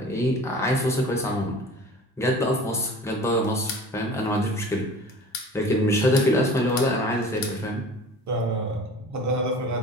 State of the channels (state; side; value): normal; both; correlation 0.42